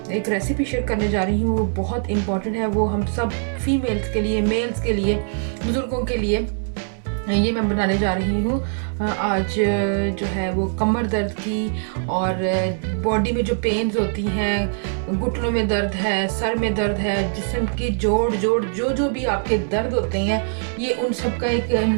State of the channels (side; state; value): left; silent; digital silence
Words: एक रेसिपी शेयर करने जा रही हूँ वो बहुत इंपॉर्टेंट है। वो हम सब फीमेल्स के लिए, मेल्स के लिए, बुज़ुर्गों के लिए ये मैं बनाने जा रही हूँ। आज जो है वो कमर दर्द की और बॉडी में जो पेन्स होती हैं, घुटनों में दर्द है, सर में दर्द है, जिस्म की जोड़ जो भी आपके दर्द होते हैं, ये उन सब का एक